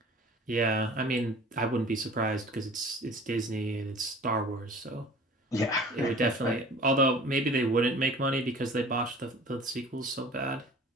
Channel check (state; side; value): normal; both; correlation 0.45